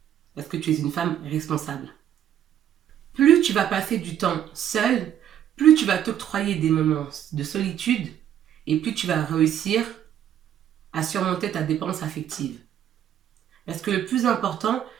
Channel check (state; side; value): quieter; left; 10.4 dB